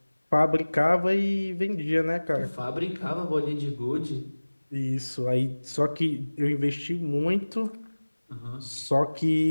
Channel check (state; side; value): inverted; both; correlation -1.00